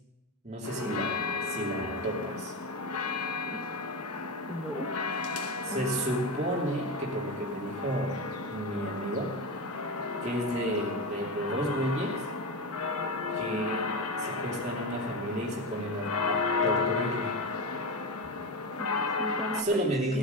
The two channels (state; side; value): normal; both; correlation 0.19